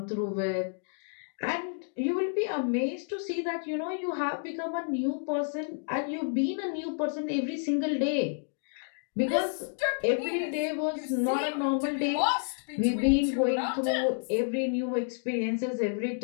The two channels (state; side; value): silent; right; digital silence